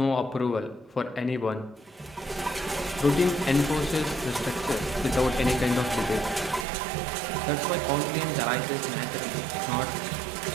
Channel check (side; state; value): left; drops out; at 6.7 s